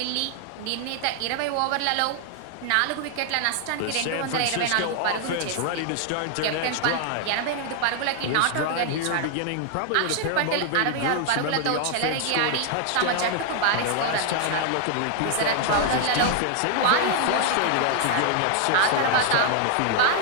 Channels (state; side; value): different; both; correlation 0.00